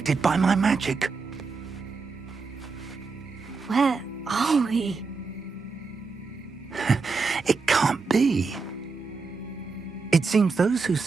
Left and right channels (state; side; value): quieter; left; 4.6 dB